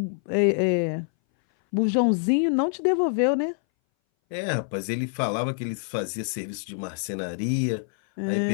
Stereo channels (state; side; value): silent; right; 60 dB below the other